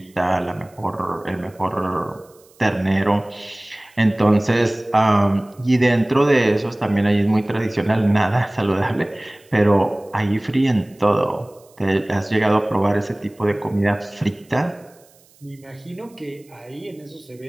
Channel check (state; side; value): noise; right; hiss, 30 dB below the sound